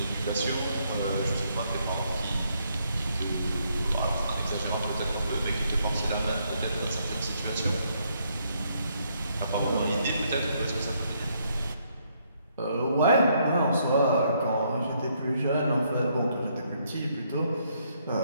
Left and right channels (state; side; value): inverted; both; correlation -0.72